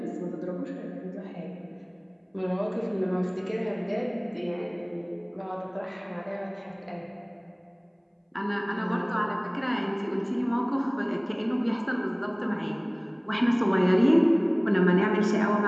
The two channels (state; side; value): identical; both; correlation 1.00